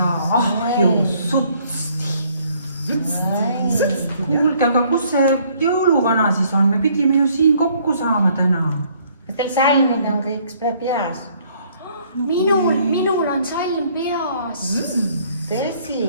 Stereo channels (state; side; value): inverted; both; correlation -0.63